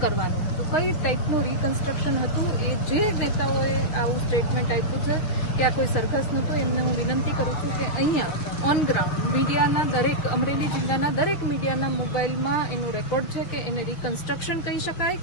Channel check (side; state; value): right; late; 6.6 ms